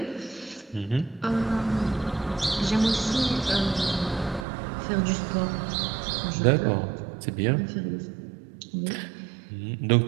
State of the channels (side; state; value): left; drops out; at 4.5 s